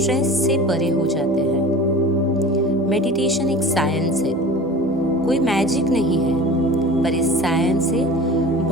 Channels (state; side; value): normal; both; correlation 0.38